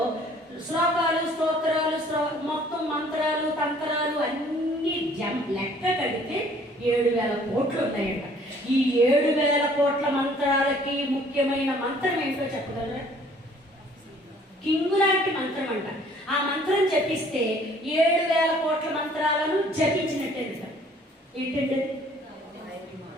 శ్లోకాలు, స్తోత్రాలు, మొత్తం మంత్రాలు, తంత్రాలు అన్నీ లెక్క కడితే 7,000 కోట్లు ఉన్నాయట. ఈ 7,000 కోట్ల మంత్రాలకి ముఖ్యమైన మంత్రం ఏంటో చెప్పగలరా? కింగు లాంటి మంత్రం అంట. ఆ మంత్రం జపిస్తే 7,000 కోట్ల మంత్రాలను జపించినట్టే. ఏంటంటే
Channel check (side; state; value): both; normal; correlation 0.57